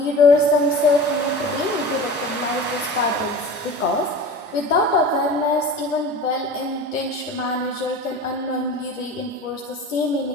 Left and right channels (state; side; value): normal; both; correlation 0.35